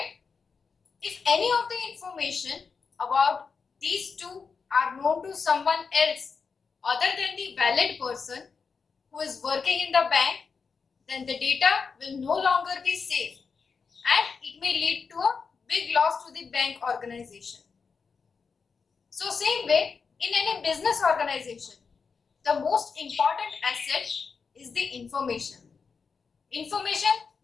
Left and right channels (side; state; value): right; quieter; 5.3 dB